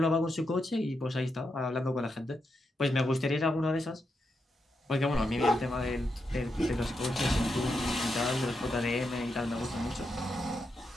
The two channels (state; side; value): normal; both; correlation 0.84